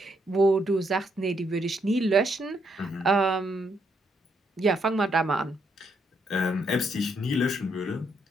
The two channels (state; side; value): normal; both; correlation 0.75